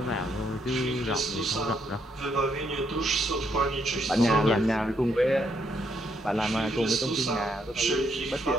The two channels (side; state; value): both; normal; correlation 0.75